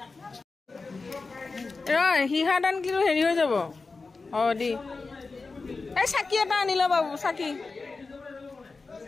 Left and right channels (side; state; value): right; quieter; 4.0 dB